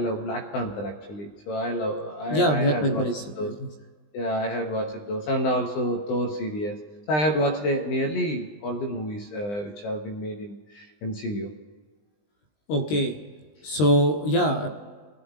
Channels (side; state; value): right; late; 20 ms